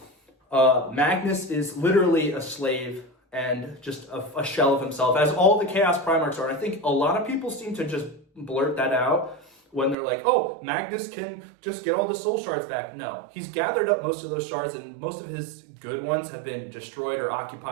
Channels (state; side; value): drops out; left; at 10.0 s